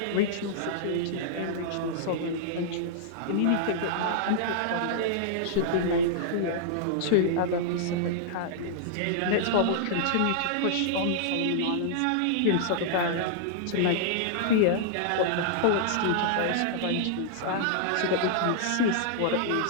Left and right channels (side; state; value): both; different; correlation -0.01